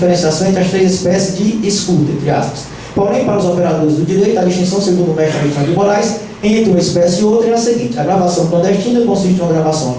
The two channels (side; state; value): both; identical; correlation 1.00